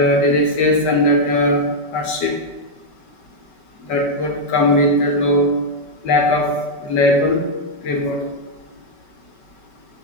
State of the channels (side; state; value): right; late; 5.2 ms